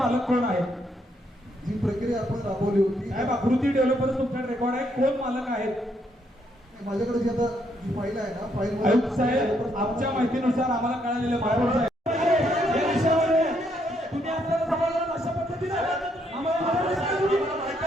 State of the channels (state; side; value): normal; both; correlation 0.74